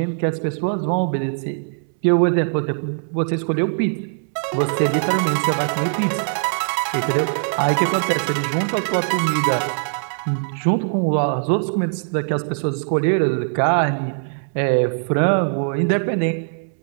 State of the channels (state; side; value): silent; left; 63 dB below the other